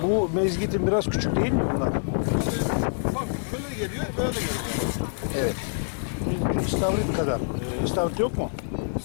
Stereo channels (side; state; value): right; silent; digital silence